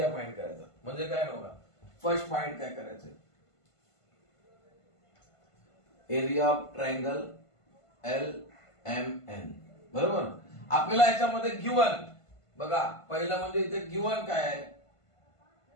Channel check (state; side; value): late; right; 1.5 ms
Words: फाइंड करायचा. म्हणजे काय बघा, फर्स्ट फाइंड काय करायचं, एरिया ऑफ ट्रायंगल LMN. बरोबर. आपल्याला याच्यामध्ये गिवन बघा, पहिलं म्हणजे इथे गिवन काय आहे,